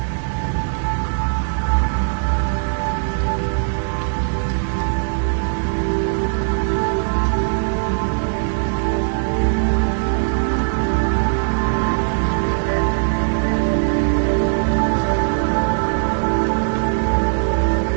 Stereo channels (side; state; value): left; silent; 66 dB below the other